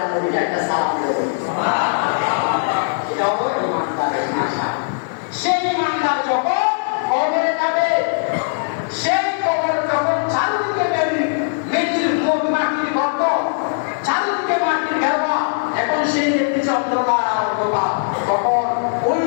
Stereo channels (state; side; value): silent; right; digital silence